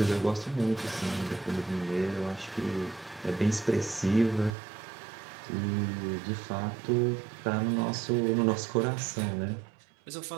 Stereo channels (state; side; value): drops out; left; at 4.5 s